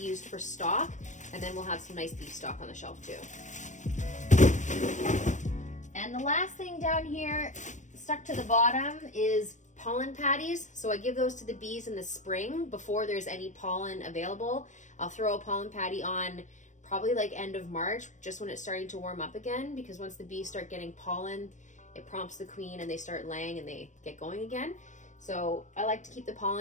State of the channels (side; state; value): right; late; 0.35 ms